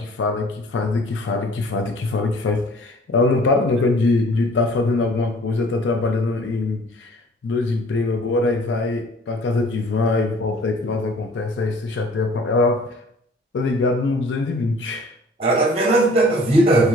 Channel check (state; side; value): normal; both; correlation 0.52